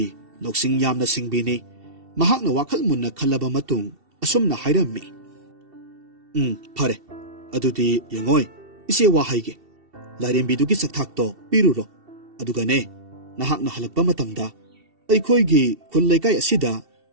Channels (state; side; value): late; left; 2.7 ms